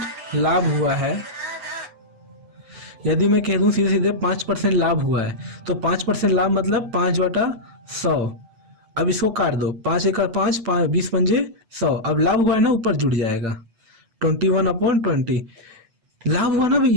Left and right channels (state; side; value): late; left; 8.1 ms